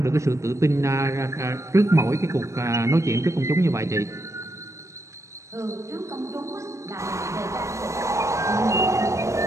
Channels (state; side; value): late; left; 0.15 ms